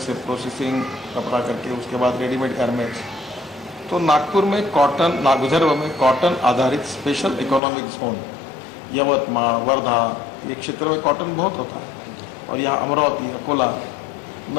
प्रोसेसिंग कपड़ा करके उसके बाद रेडीमेड गारमेंट्स। तो नागपुर में कॉटन, विदर्भ में कॉटन आधारित special economic zone, Yavatmal, Wardha, ये क्षेत्र में कॉटन बहुत होता है। और यहाँ अमरावती, अकोला,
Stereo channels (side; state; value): right; drops out; at 7.6 s